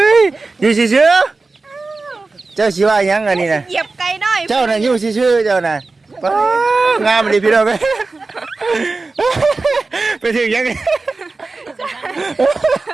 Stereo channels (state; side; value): quieter; left; 3.7 dB